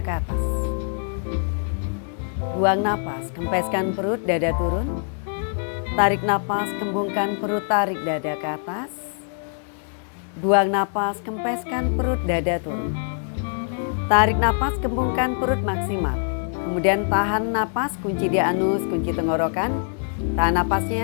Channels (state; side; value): silent; right; digital silence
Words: atas. Buang napas, kempeskan perut, dada turun. Tarik napas, kembungkan perut, tarik dada ke atas. Buang napas, kempeskan perut, dada turun. Tarik napas, kembungkan perut maksimal. Kemudian tahan napas, kunci di anus, kunci tenggorokan. Tahan